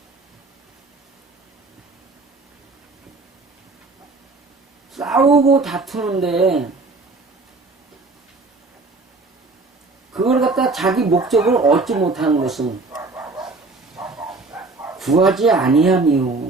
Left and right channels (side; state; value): left; quieter; 3.6 dB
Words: 싸우고 다투는데 그걸 갖다 자기 목적을 얻지 못하는 것은 구하지